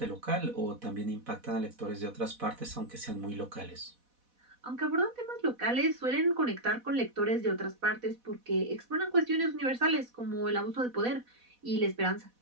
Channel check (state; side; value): late; left; 4.1 ms